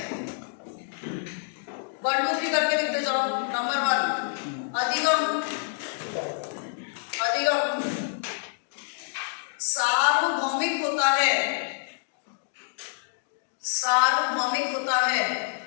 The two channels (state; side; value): silent; right; digital silence